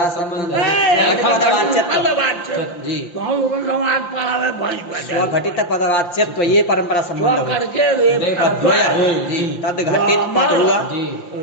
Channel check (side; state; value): right; late; 5.8 ms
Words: संबंध पदवाच्य। जी। तो हम लोग समाज पढ़ावे भैंस स्वघटित पदवाच्यत्व ये परंपरा स्व संबंध हुआ। करके वे तद्वय। जी। तद घटित पद हुआ। जी।